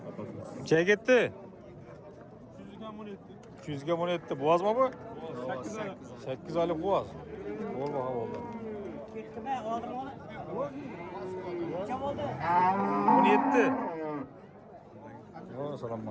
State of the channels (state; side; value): identical; both; correlation 1.00